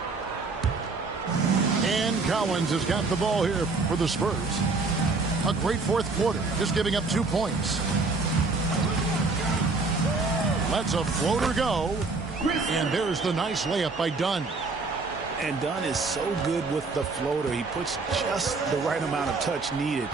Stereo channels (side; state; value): left; quieter; 3.9 dB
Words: And Collins has got the ball here for the Spurs. A great fourth quarter, just giving up 2 points. Lets a floater go. And there's the nice layup by Dunn. And Dunn is so good with the floater. He puts just the right amount of touch needed